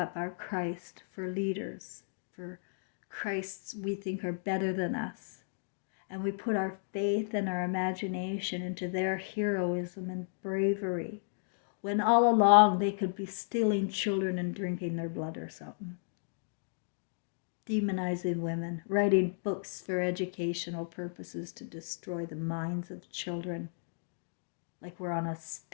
our Christ for leaders, for Christs we think are better than us. And we put our faith and our imagination into their heroism and bravery, when all along they could be stealing children and drinking their blood or something. Demonizing women, writing books for educational purposes to destroy the minds of children, like we're on a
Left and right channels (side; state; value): right; silent; digital silence